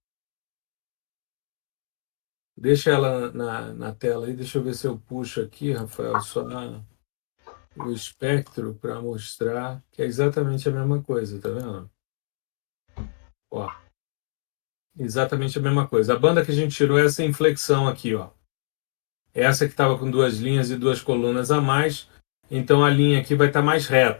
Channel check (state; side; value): silent; right; digital silence